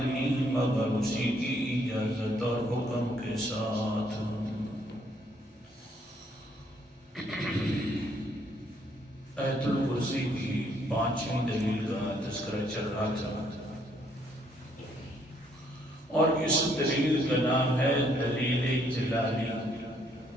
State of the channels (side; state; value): both; normal; correlation 0.68